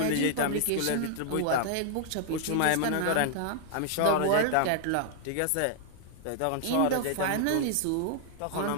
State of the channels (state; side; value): different; both; correlation -0.01